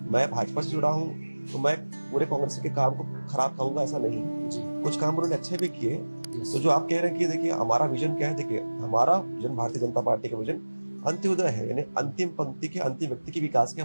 मैं भाजपा से जुड़ा हूँ तो मैं पूरे कांग्रेस के काम को खराब कहूंगा, ऐसा नहीं। कुछ काम उन्होंने अच्छे भी किए। तो जो आप कह रहे हैं कि देखिए हमारा विजन क्या है, देखिए हमारा विजन, भारतीय जनता पार्टी का विजन अंत्योदय है, यानी अंतिम पंक्ति के अंतिम व्यक्ति के विकास की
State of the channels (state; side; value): inverted; both; correlation -1.00